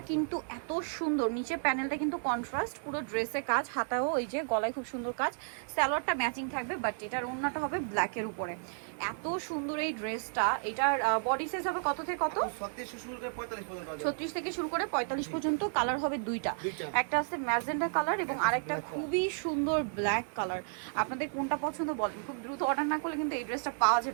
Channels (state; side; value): silent; left; 56 dB below the other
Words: কিন্তু এত সুন্দর, নিচে প্যানেলটা কিন্তু কন্ট্রাস্ট, পুরো ড্রেসে কাজ, হাতাও এই যে গলায় খুব সুন্দর কাজ, সালোয়ারটা ম্যাচিং থাকবে, বাট এটার ওড়নাটা হবে ব্ল্যাকের উপরে। এত সুন্দর এই ড্রেসটা। এটার বডি সাইজ হবে কত থেকে কত? 36 থেকে শুরু করে 45 পর্যন্ত। কালার হবে দুইটা, একটা আছে ম্যাজেন্ডা কালার এবং আরেকটা খুবই সুন্দর ব্ল্যাক কালার। আপনাদের কোনটা পছন্দ বলেন, খুব দ্রুত অর্ডার না করলে কিন্তু এই ড্রেসটা পাওয়া